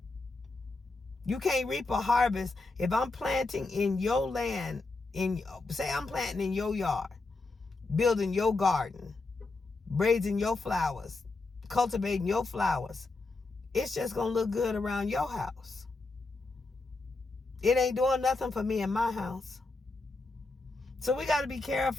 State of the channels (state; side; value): quieter; right; 3.4 dB